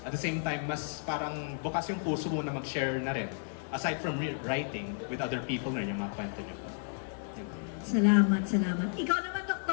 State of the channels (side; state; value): right; silent; digital silence